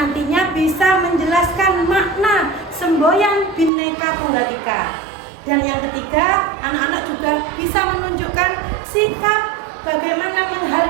bisa menjelaskan makna semboyan Bhinneka Tunggal Ika. Dan yang ketiga, anak-anak juga bisa menunjukkan sikap bagaimana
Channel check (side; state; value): left; drops out; at 3.7 s